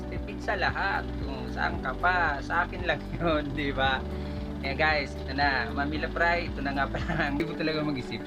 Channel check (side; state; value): both; identical; correlation 1.00